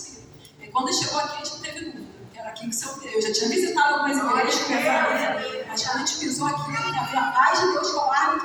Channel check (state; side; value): identical; both; correlation 1.00